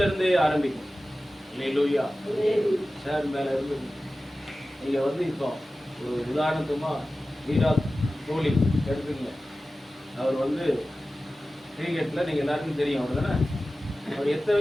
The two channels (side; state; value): both; normal; correlation 0.95